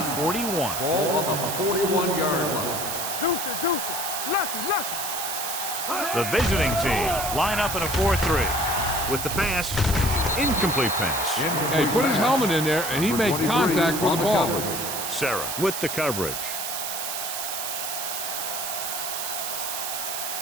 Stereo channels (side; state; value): right; noise; hiss, 3 dB below the sound